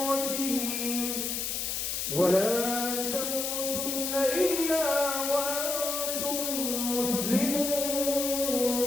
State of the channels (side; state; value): left; noise; hiss, 2 dB below the sound